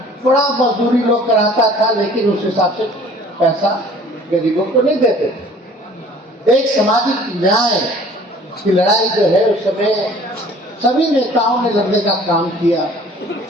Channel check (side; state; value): both; normal; correlation 0.51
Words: बड़ा मजदूरी लोग कराता था, लेकिन उस हिसाब से पैसा गरीबों को नहीं देते थे। एक सामाजिक न्याय की लड़ाई जो है उस समय सभी नेताओं ने लड़ने का काम किया।